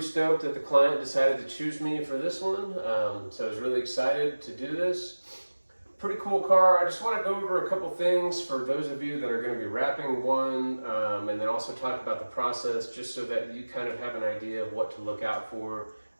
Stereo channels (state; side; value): inverted; both; correlation -1.00